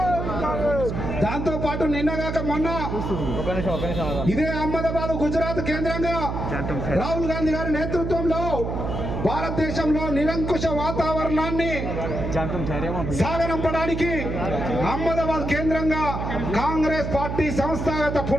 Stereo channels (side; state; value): right; noise; hum, 3 dB below the sound